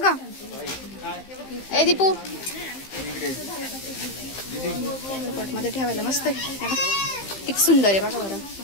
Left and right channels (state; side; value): late; right; 15 ms